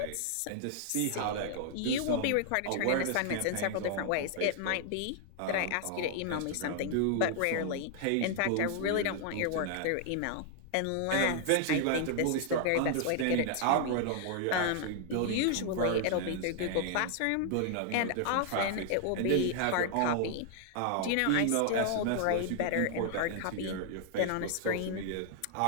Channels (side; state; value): both; different; correlation 0.00